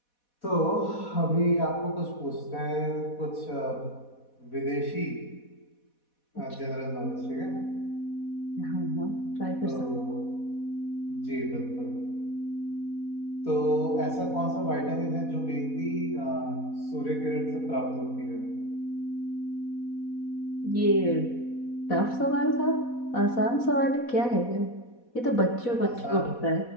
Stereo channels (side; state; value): right; late; 4.1 ms